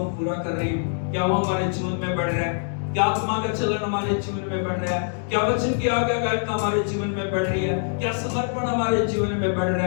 पूरा कर रहे हैं? क्या वो हमारे जीवन में बढ़ रहा है? क्या आत्मा का चलन हमारे जीवन में बढ़ रहा है? क्या वचन की आज्ञाकारिता हमारे जीवन में बढ़ रही है? क्या समर्पण हमारे जीवन में बढ़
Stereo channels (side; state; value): right; silent; digital silence